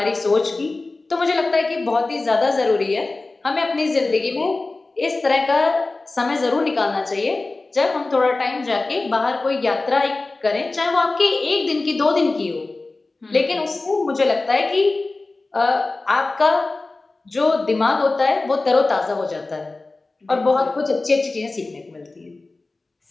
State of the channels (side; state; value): right; quieter; 3.3 dB